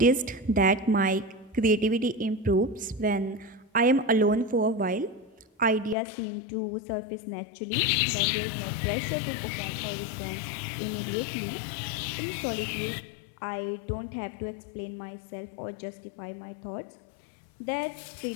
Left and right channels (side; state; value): right; drops out; at 6.0 s